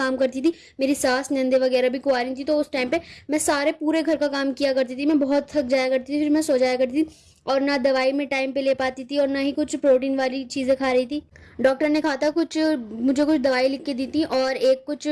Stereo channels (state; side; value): identical; both; correlation 1.00